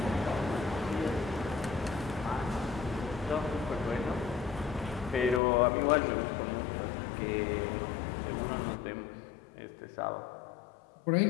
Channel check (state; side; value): drops out; right; at 5.4 s